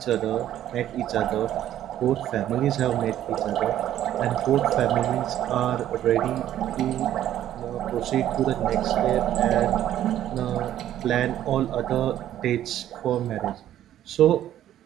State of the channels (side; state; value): left; quieter; 12.0 dB